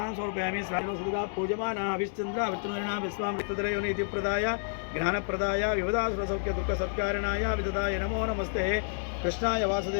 समर्पयामि। स्वामिनोसुधा पूजमाना हविश्चन्द्र विष्णुना विश्वामृतधरयोनिति प्रदाय ज्ञानप्रदाय विवदासुरसौख्यदुःखसत्कारणाय विददाय नमो नमस्ते। कृष्णाय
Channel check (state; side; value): silent; right; digital silence